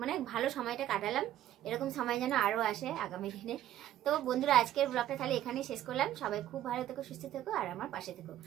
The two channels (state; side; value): quieter; left; 12.5 dB